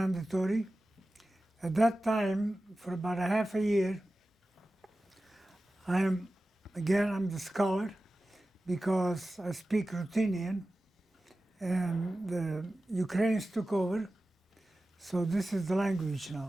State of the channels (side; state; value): both; normal; correlation 0.95